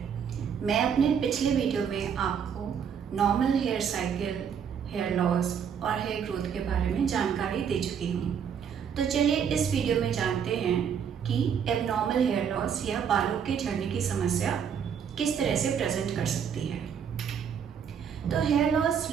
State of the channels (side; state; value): left; quieter; 7.6 dB